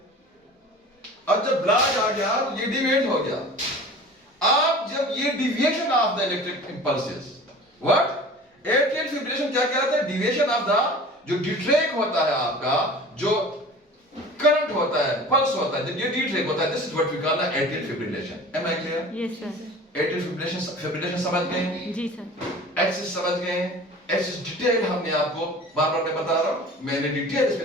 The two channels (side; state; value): both; normal; correlation 0.41